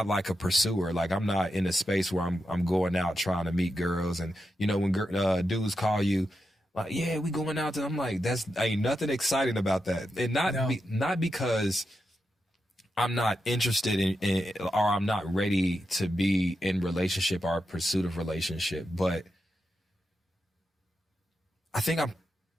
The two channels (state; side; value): normal; both; correlation 0.87